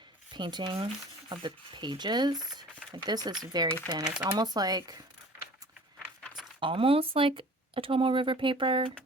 painting of the pages. Like, this is very thin. It's almost like a Tomo River paper,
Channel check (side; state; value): both; normal; correlation 0.45